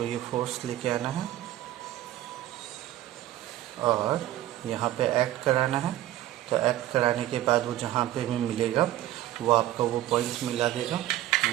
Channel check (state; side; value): quieter; left; 14.1 dB